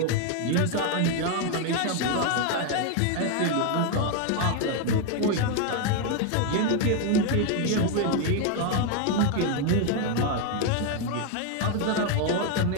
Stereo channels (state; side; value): different; both; correlation 0.01